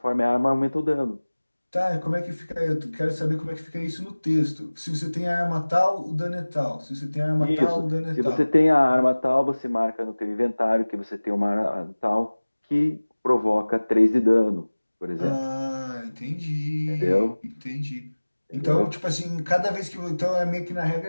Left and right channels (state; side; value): inverted; both; correlation -1.00